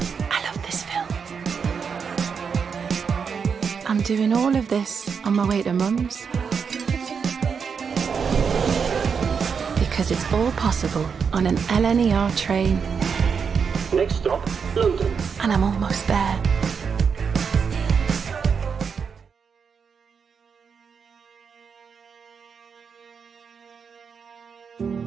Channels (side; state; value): left; quieter; 6.2 dB